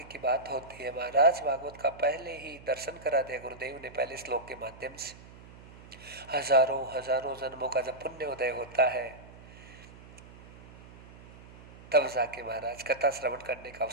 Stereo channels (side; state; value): right; noise; hum, 19 dB below the sound